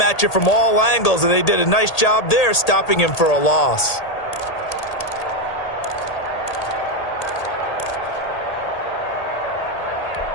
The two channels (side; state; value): right; late; 1.8 ms